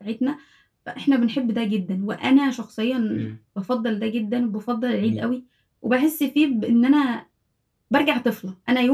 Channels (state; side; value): identical; both; correlation 1.00